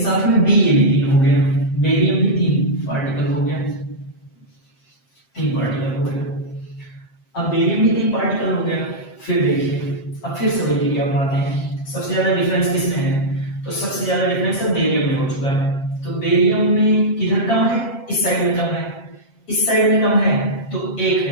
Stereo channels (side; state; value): right; late; 7.5 ms